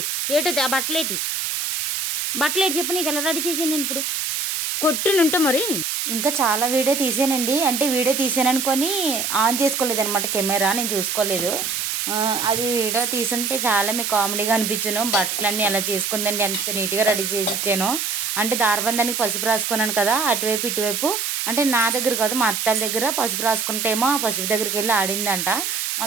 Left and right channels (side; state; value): right; noise; hiss, 1 dB below the sound